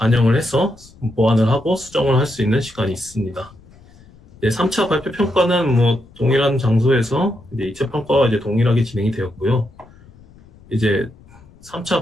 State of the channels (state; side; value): noise; left; rumble, 25 dB below the sound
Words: 해서 보완을 하고 수정을 할 수 있는 시간이 있습니다. 3차 발표 평가는 뭐 동일한 장소에서 이제 2차 평가와 이제 동일하게 진행이 되었고요. 이제